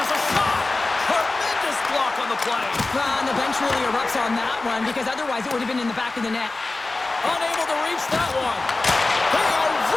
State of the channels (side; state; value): right; quieter; 3.3 dB